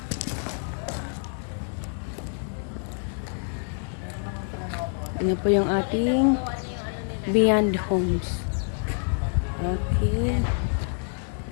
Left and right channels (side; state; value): right; silent; 57 dB below the other